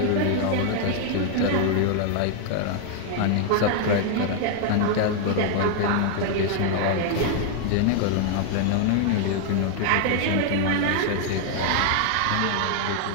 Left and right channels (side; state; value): both; different; correlation 0.00